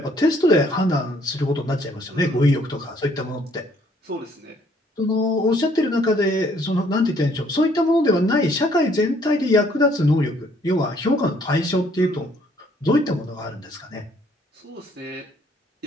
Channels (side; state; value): both; normal; correlation 0.64